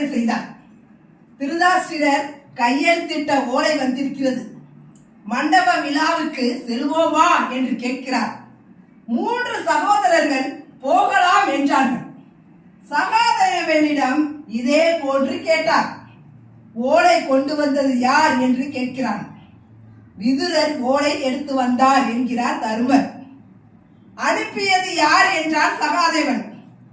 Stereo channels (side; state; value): both; identical; correlation 1.00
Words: செய்தார். திருதாஷ்டிரர் கையெழுத்திட்ட ஓலை வந்திருக்கிறது, மண்டப விழாவுக்கு செல்வோமா என்று கேட்கிறார். 3 சகோதரர்கள் போகலாம் என்றார்கள். சகாதேவனிடம் இதே போன்று கேட்டார். ஓலை கொண்டு வந்தது யார் என்று கேட்கிறான். விதுரர் ஓலை எடுத்து வந்தார் என்கிறார் தர்மர். அனுப்பியது யார் என்றார் சகாதேவன்.